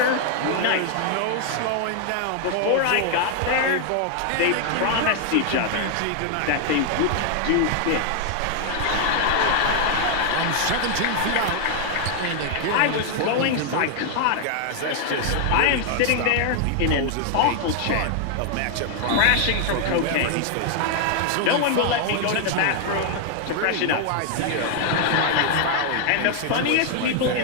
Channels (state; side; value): different; both; correlation 0.00